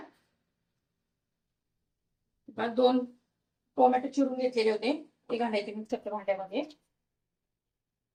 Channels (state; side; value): identical; both; correlation 1.00